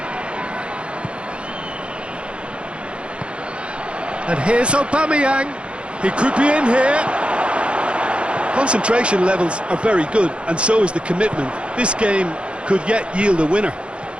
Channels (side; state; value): left; late; 0.059 ms